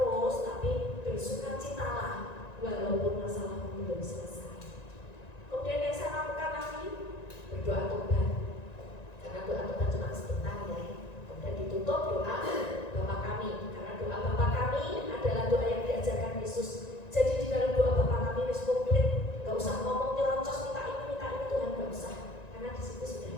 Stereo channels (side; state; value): right; late; 1.9 ms